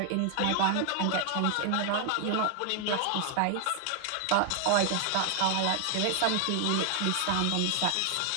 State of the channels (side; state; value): both; different; correlation 0.00